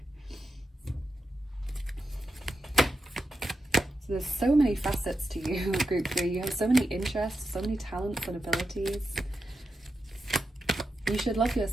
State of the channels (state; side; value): normal; both; correlation 0.88